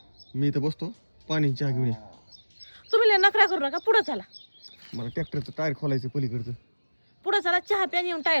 मी इथं बसतो, पाणी चहा घेऊन ये. तुम्ही लय नखरा करू नका, पुढं चला. मला ट्रॅक्टरचं टायर खोलायचं पलीकडचं. पुढं चला, चहा प्याने येऊन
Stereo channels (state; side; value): inverted; both; correlation -1.00